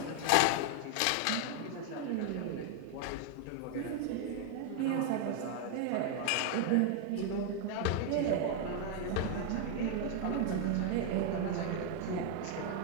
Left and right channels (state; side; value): different; both; correlation 0.00